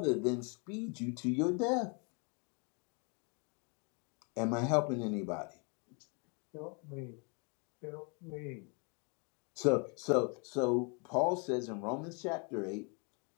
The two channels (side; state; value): right; quieter; 34.9 dB